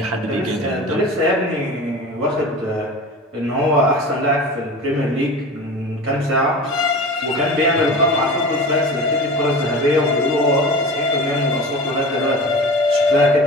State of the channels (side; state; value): both; normal; correlation 0.34